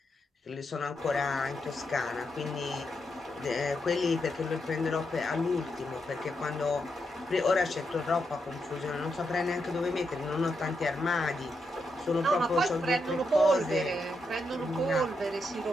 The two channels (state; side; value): normal; both; correlation 0.83